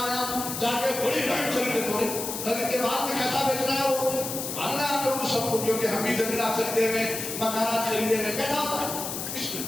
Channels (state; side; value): noise; left; hiss, 5 dB below the sound